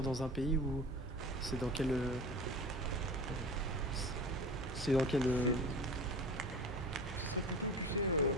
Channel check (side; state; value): both; normal; correlation 0.35